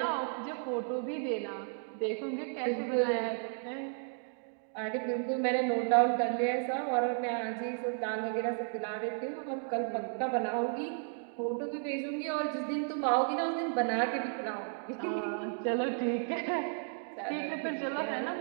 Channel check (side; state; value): left; silent; 55 dB below the other